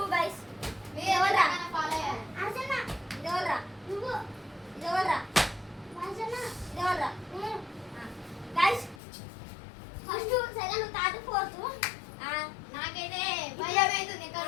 గైస్. ఎవరా ఫాలో అయ్యారు? అర్చన ఎవరా? నువ్వు ఎవరా? అర్చన ఎవరా? Guys first second third fourth నాకైతే భయం అవుతుంది ఎక్కడ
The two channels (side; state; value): right; drops out; at 9.0 s